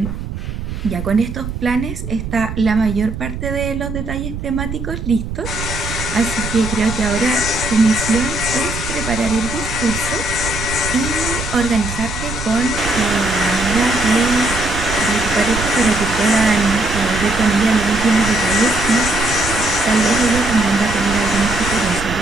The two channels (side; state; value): right; noise; rumble, 7 dB below the sound